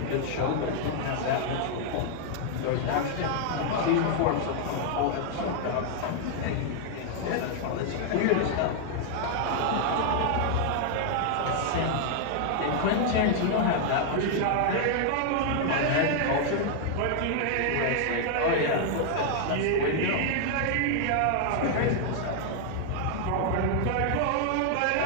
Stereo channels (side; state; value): both; different; correlation 0.00